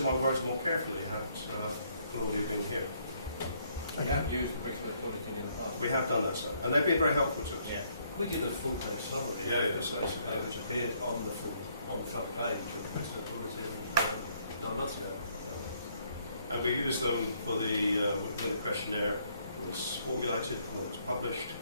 my words more carefully had Claudia been here. We have used the Brixworth Bulletin in the past. We have done that, sir, and they've been very helpful to us. Yeah. We did a full page summary, which appeared on the front page of the Brixworth Bulletin 9 months ago. And we used them for when the questionnaire was formulated, when it was published,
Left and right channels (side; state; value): both; inverted; correlation -0.69